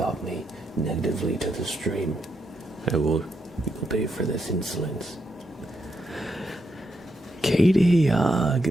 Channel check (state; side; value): normal; both; correlation 0.81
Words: me negatively to the stream? You will pay for this insolence. Katie,